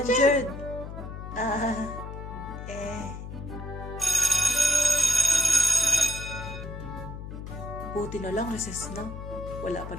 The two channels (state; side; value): noise; left; hum, 10 dB below the sound